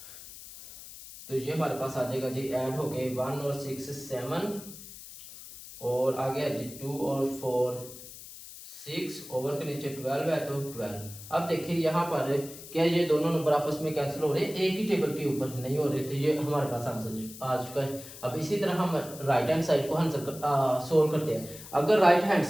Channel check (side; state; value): left; noise; hiss, 15 dB below the sound